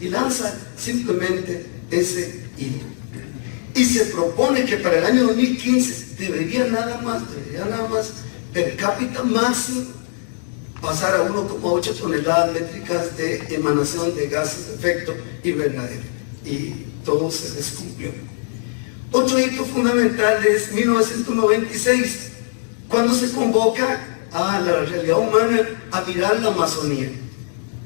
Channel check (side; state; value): right; silent; digital silence